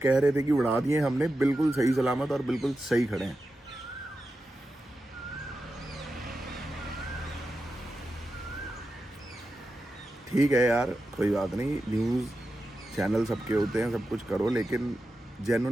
कह रहे थे कि उड़ा दिए हमने, बिल्कुल सही सलामत और बिल्कुल सही खड़े हैं। ठीक है यार, कोई बात नहीं, न्यूज़ चैनल सबके होते हैं, सब कुछ करो, लेकिन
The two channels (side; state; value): both; normal; correlation 0.90